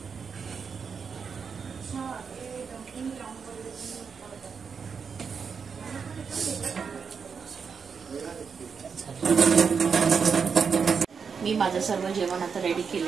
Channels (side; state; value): left; quieter; 6.0 dB